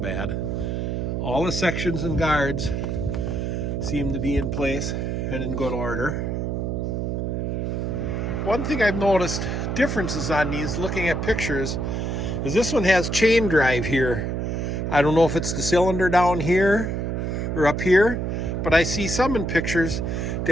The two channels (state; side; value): noise; right; hum, 1 dB below the sound